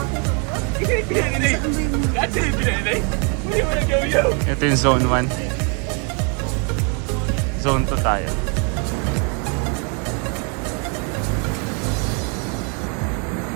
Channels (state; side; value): quieter; left; 36.8 dB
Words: Ito yung zone 1. Zone 2 tayo.